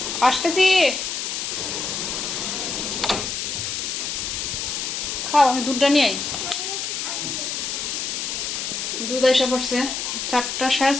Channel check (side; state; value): left; noise; hiss, 3 dB below the sound